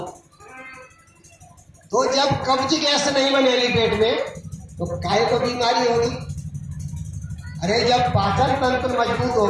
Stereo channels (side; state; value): both; identical; correlation 1.00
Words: तो जब कब्ज गैस नहीं बनेगी पेट में तो काहे को बीमारी होगी? अरे जब पाचन तंत्र मजबूत